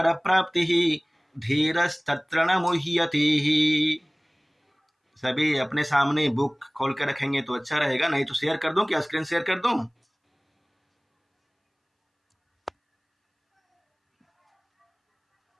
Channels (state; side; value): identical; both; correlation 1.00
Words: प्राप्ति धीरस्तत्र न मुह्यति। सभी अपने सामने बुक खोल कर रखेंगे तो अच्छा रहेगा, नहीं तो शेयर कर दूं क्या? स्क्रीन शेयर कर दूं?